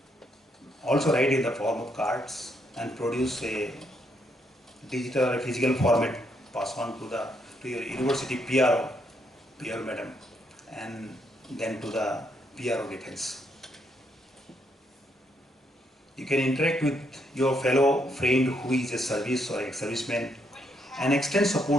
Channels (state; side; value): normal; both; correlation 0.75